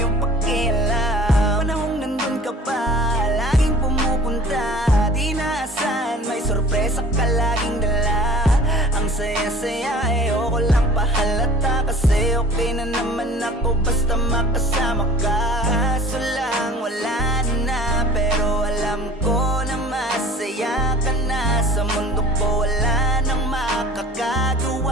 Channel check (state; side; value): normal; both; correlation 0.48